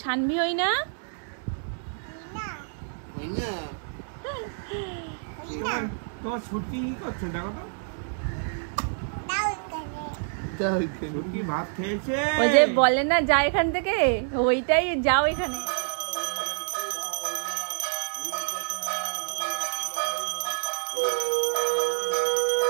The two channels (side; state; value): left; silent; digital silence